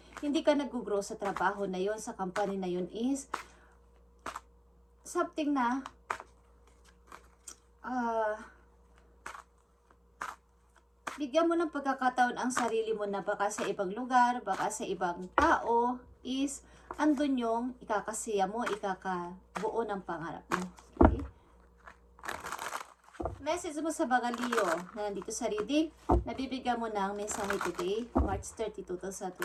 Hindi ka nag-grow sa trabaho na yun, sa company na yun is something na bigyan mo ng pagkakataon ang sarili mo na baka sa ibang lugar, baka sa ibang tao, is andun yung ikakasiya mo, ikakabuo ng pangarap mo. Okay? Message mo sa mga Leo na nandito sa reading, nabibigyan mo ng mensahe today, March 30,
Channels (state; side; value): identical; both; correlation 1.00